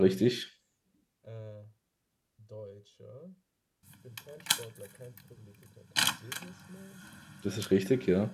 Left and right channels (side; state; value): both; identical; correlation 1.00